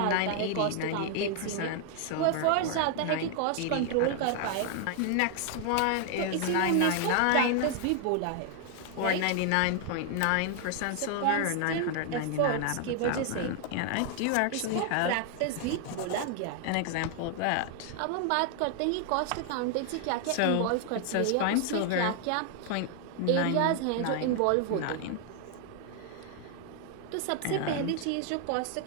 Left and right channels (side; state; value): both; different; correlation 0.00